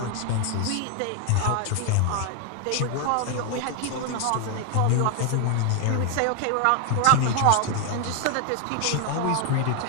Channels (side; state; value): both; different; correlation 0.00